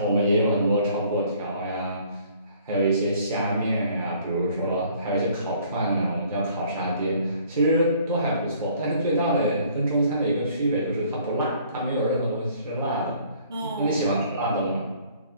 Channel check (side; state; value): both; inverted; correlation -0.58